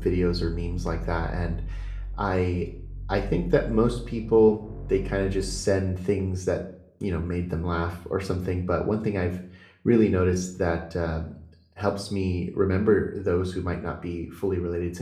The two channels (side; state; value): both; identical; correlation 1.00